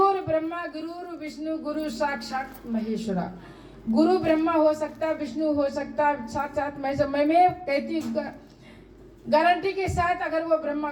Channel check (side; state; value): both; identical; correlation 1.00